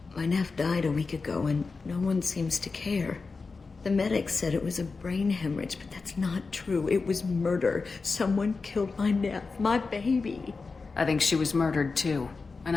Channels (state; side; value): quieter; right; 4.3 dB